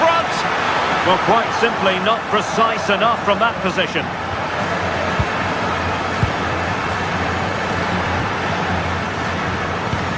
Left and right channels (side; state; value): both; identical; correlation 1.00